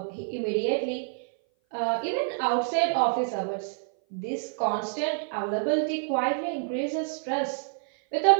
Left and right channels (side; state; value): left; silent; 57 dB below the other